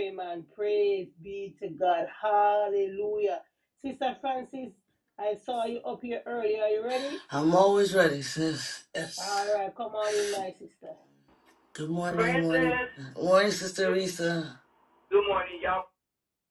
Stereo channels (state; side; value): identical; both; correlation 1.00